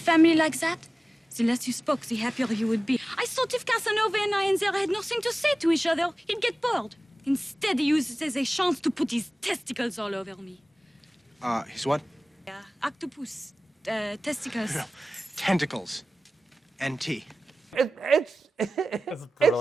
like that, the less you spoke, the happier you would be. I thought if Casanova and I had nothing to say to each other, he'd get bored. Instead, he uses it as a chance to put his testicles all over me. His what? Yeah, octopus, testicles. Tentacles. NT. It's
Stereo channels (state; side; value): normal; both; correlation 0.96